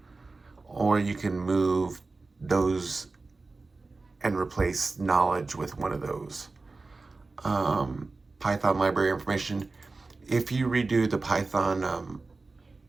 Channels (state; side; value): quieter; left; 3.7 dB